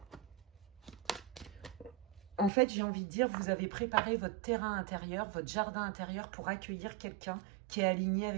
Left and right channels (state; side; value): drops out; left; at 2.5 s